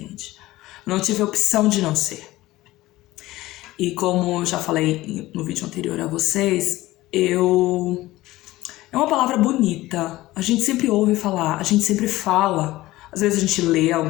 Não tive a opção de não ser. E como eu já falei no vídeo anterior a vocês, é uma palavra bonita. A gente sempre ouve falar, a gente sempre fala. Às vezes a gente lê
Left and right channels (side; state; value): right; quieter; 17.5 dB